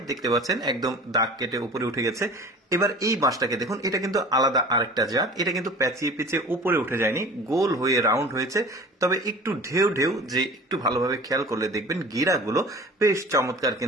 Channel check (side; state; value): both; normal; correlation 0.41